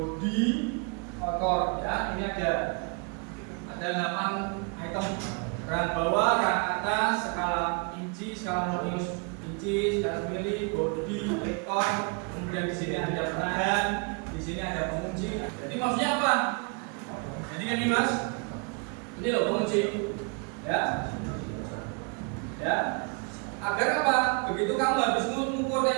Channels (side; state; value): left; quieter; 34.7 dB